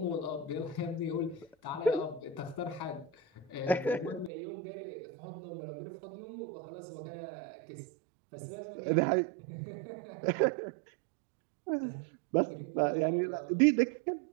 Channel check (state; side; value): drops out; left; at 4.3 s